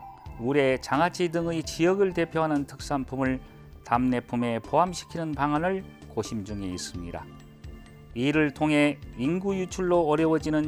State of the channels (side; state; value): both; identical; correlation 1.00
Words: 우레, 장아찌 등의 지역을 대표하는 특산품을 답례품에 포함시키는 방안을 고심 중에 있습니다. 이를 통해 인구 유출로